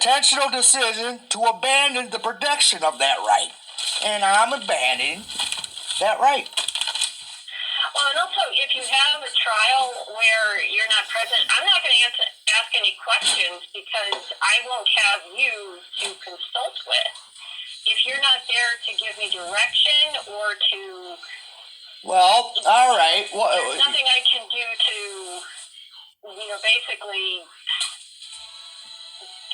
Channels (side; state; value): both; identical; correlation 1.00